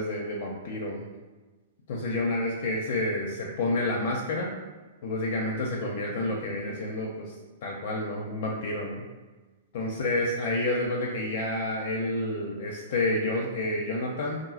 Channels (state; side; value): inverted; both; correlation -0.38